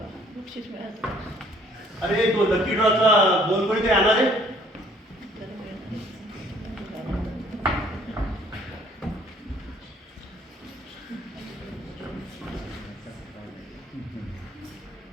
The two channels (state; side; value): normal; both; correlation 0.59